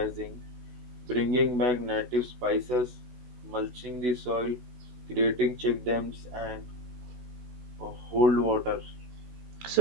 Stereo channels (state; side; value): late; left; 16 ms